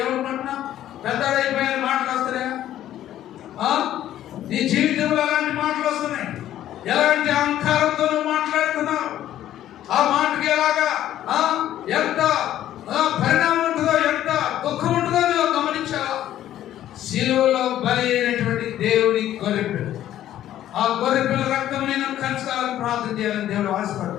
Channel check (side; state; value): right; quieter; 12.3 dB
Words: ఏమనుకుంటున్నావు? పెద్దడైపోయిన మాటలు వస్తున్నాయా? నీ జీవితంలో అలాంటి మాటలు వస్తున్నాయి. ఎలాంటి అహంకారంతో మాట్లాడుతున్నావు? ఆ మాటకి ఎలాగా ఎంత పరిణామం ఉంటుందో, ఎంత దుఃఖం ఉంటుందో నువ్వు గమనించావా? శిలువలో బలి అయినటువంటి దేవుడి గొర్రెపిల్ల, ఆ గొర్రెపిల్ల రక్తం నేను కలుసుకోవాలని ప్రార్థన చేయాలని దేవుడు